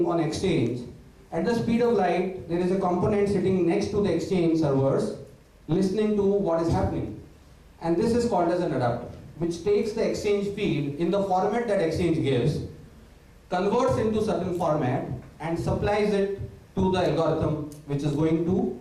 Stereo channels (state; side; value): identical; both; correlation 1.00